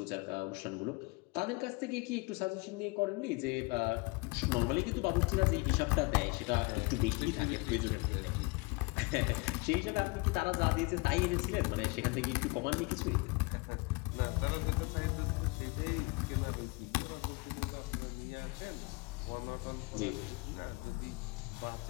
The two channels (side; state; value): right; quieter; 27.1 dB